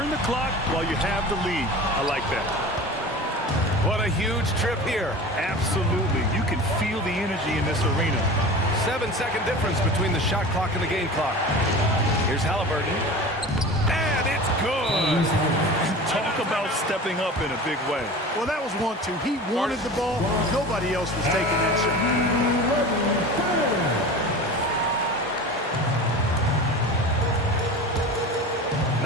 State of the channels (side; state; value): both; normal; correlation 0.35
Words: the clock while you have the lead. I like that. What a huge trip here. Absolutely. You can feel the energy in this arena. 7-second difference between the shot clock and the game clock. Here's Halliburton. And it's good. Talk about stepping up in a big way. Well, that was 1-2. He wanted the ball. Nobody else was taking that shot.